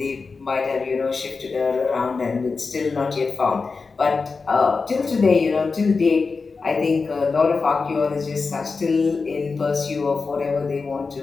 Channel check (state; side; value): quieter; right; 4.5 dB